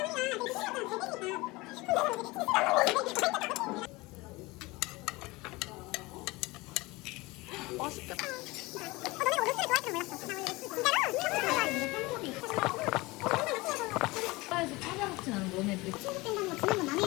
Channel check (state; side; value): quieter; right; 22.5 dB